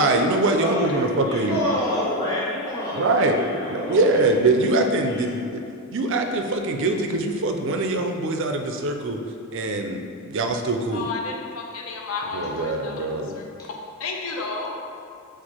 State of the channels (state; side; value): normal; both; correlation 0.07